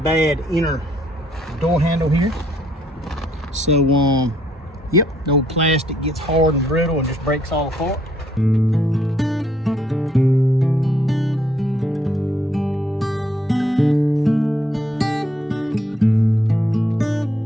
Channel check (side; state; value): both; normal; correlation 0.69